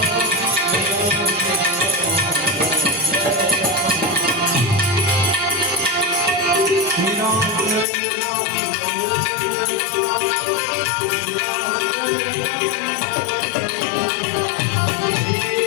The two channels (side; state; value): right; drops out; at 7.9 s